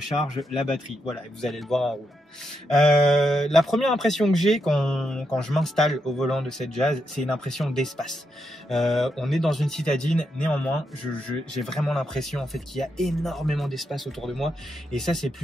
la batterie. Voilà, vous allez le voir en roulant. La première impression que j'ai quand je m'installe au volant de cette Jazz, c'est une impression d'espace. On est dans une citadine, néanmoins j'ai vraiment l'impression en fait qu'il y a énormément d'espace autour de moi et ça c'est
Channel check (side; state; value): both; normal; correlation 0.82